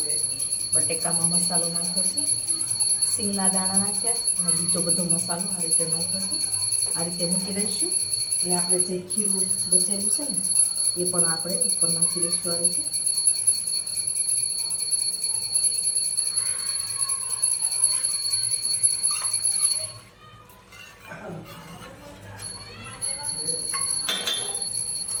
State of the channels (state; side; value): identical; both; correlation 1.00